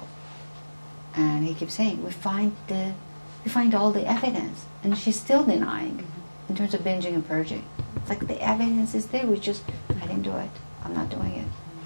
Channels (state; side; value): inverted; both; correlation -1.00